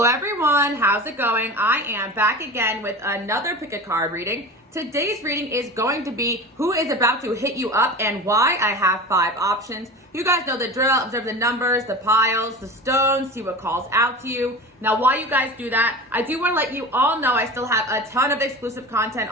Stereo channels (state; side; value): normal; both; correlation 0.32